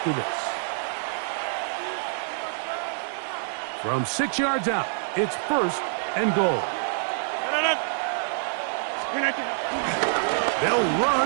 this. From 6 yards out, it's 1st and goal. They'll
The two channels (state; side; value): silent; left; digital silence